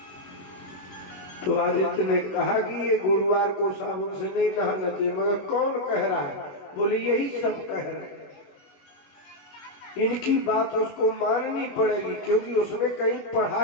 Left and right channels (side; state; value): right; late; 21 ms